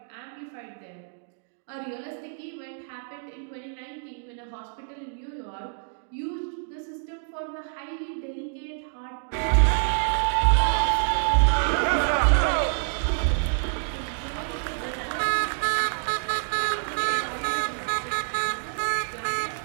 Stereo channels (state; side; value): silent; left; digital silence